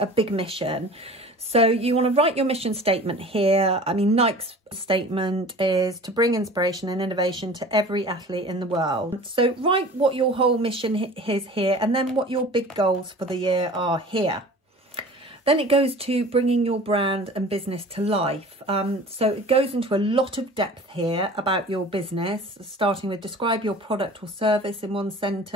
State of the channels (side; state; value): both; normal; correlation 0.42